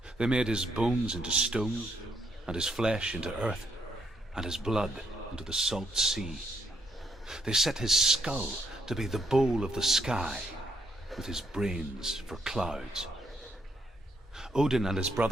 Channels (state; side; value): normal; both; correlation 0.76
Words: They made his bones into stone, and his flesh into earth, and his blood into the salt sea. They set his skull to be the bowl of the sky, with his brains for clouds. Odin and his